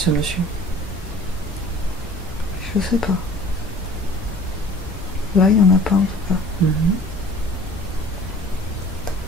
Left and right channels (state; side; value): normal; both; correlation 0.48